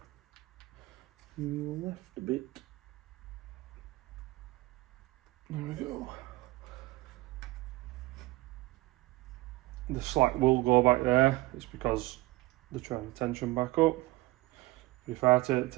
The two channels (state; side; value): quieter; left; 19.7 dB